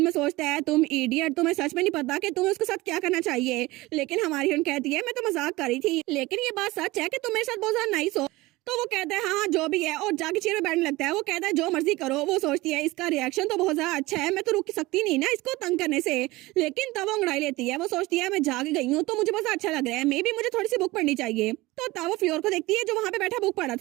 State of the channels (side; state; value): left; quieter; 20.2 dB